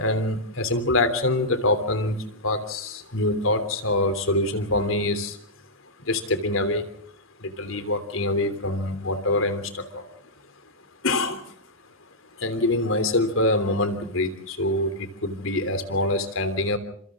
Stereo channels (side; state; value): both; normal; correlation -0.10